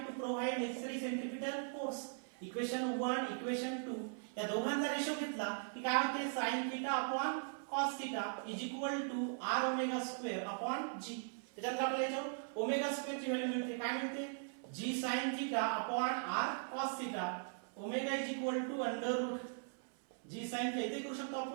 to provide necessary centripetal force. Equation 1 equation 2 या दोघांचा रेशो घेतला की काय होते sin theta upon cos theta is equal to r omega square upon g. त्याच्यानंतर आपल्याला याच्यावर ओमेगा स्क्वेअर ची व्हॅल्यू मिळते, काय मिळते g sin theta upon r cos theta. Omega is equal to under root g sin theta इथे करू शकतो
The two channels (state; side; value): silent; left; 51 dB below the other